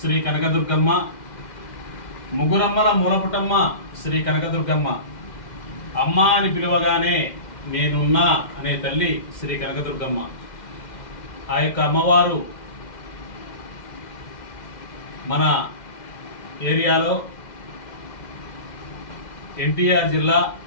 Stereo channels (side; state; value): right; late; 2.1 ms